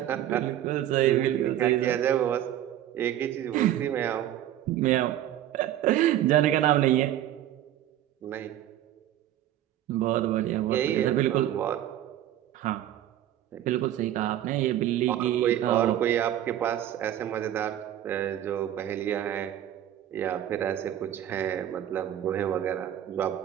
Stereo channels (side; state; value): left; quieter; 12.1 dB